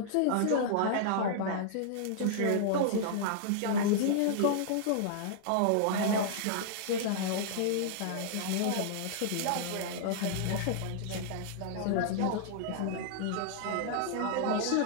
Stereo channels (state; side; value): different; both; correlation -0.01